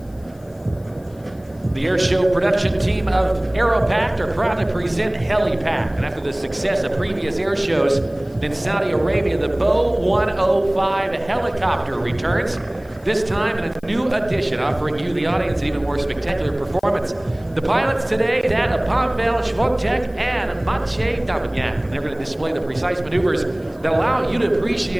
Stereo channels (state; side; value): noise; left; hiss, 30 dB below the sound